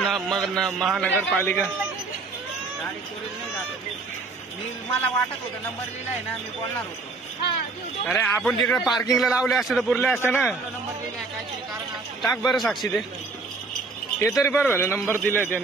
मला वाटत होतं नंबर लिहिलाय ना, मी बोलणार होतो. अरे आपण तिकडे पार्किंगला लावले असते तर पुरले असते ना. नंबर लिहिलाय काहीतरी कारण टाक बरं साक्षी ते तरी बरं झालं नंबर दिलाय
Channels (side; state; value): left; quieter; 3.8 dB